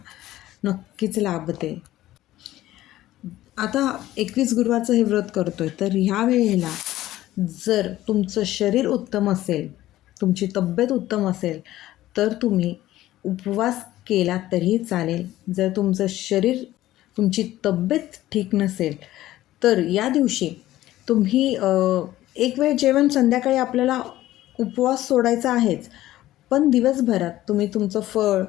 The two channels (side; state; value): right; quieter; 15.0 dB